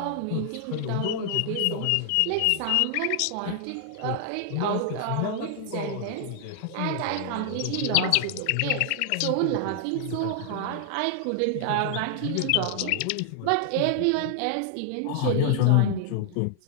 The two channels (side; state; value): both; different; correlation 0.00